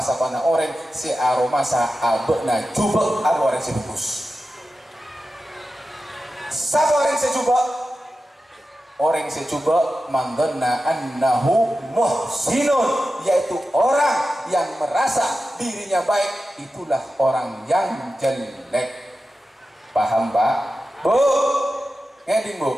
orang si aromasa abena jubek orang si bagus. Sapa orang si jubek? Orang si jubek man dhanna annahu muhsinun, yaitu orang yang merasa dirinya baik, itulah orang yang jelek. Paham Pak? Bu? Ngeding Bu?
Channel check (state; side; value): normal; both; correlation 0.92